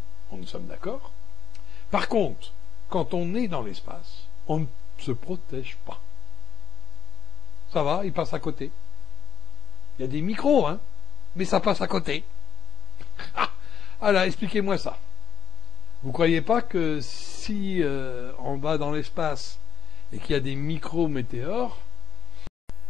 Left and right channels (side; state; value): right; quieter; 8.6 dB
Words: Nous sommes d'accord. Par contre, quand on est dans l'espace, on ne se protège pas. Ça va, il passe à côté. Il y a des micros, mais ça passe à côté. Alors, expliquez-moi ça. Vous croyez pas que si on va dans l'espace et qu'il y a des micrométéores...